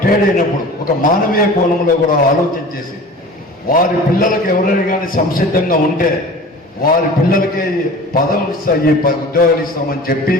అయినప్పుడు ఒక మానవీయ కోణంలో కూడా ఆలోచన చేసి వారి పిల్లలకు ఎవరైనా కానీ సంసిద్ధంగా ఉంటే వారి పిల్లలకి పదవులు ఇస్తాయి, ఉద్యోగాలు ఇస్తామని చెప్పి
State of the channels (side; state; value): both; normal; correlation 0.40